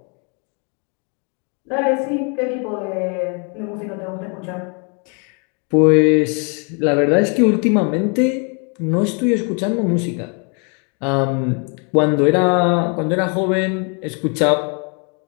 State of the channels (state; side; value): quieter; right; 36.6 dB